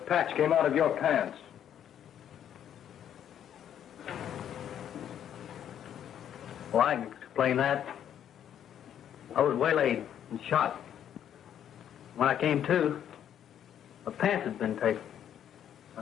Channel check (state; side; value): quieter; right; 9.8 dB